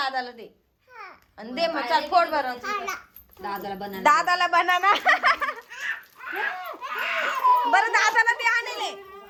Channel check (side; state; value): both; identical; correlation 1.00